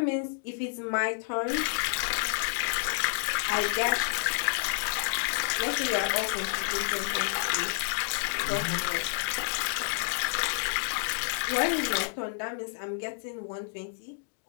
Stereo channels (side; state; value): right; silent; digital silence